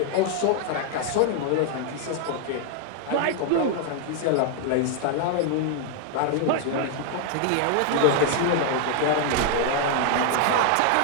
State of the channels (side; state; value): both; different; correlation 0.00